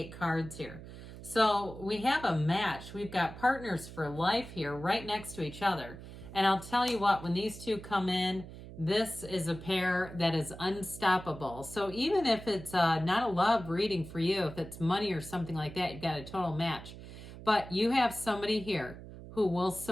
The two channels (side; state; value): right; noise; hum, 14 dB below the sound